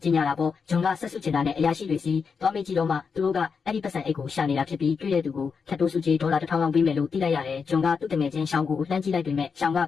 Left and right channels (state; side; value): quieter; right; 5.7 dB